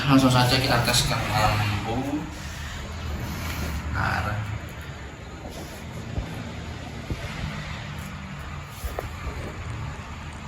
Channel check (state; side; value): identical; both; correlation 1.00